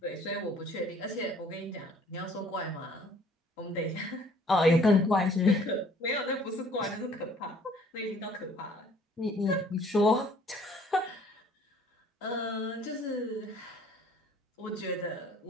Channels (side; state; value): both; normal; correlation 0.56